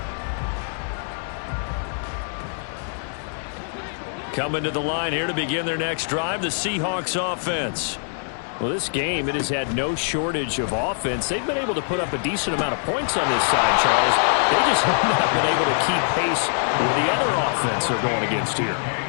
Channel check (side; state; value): right; silent; 63 dB below the other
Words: Coming to the line here to begin their next drive, the Seahawks offense. Well, this game, it has had no shortage of offense. They've been able to put up a decent amount of points on this side, Charles. They just have not been able to keep pace with the other offense they're going against here.